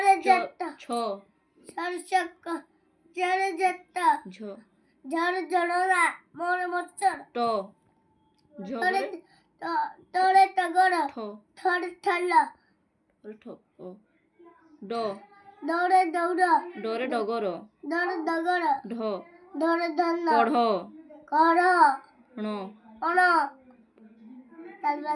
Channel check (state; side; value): identical; both; correlation 1.00